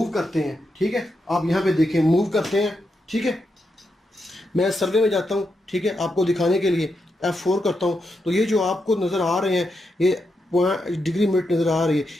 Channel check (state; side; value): normal; both; correlation 0.84